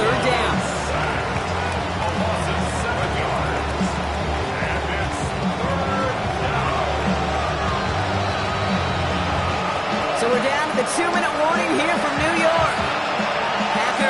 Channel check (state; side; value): identical; both; correlation 1.00